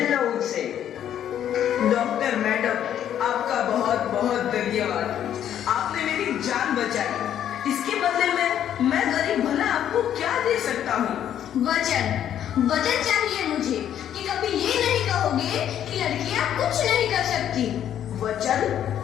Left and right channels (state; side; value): quieter; right; 10.3 dB